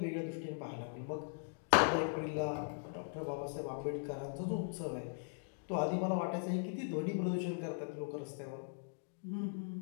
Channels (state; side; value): silent; right; digital silence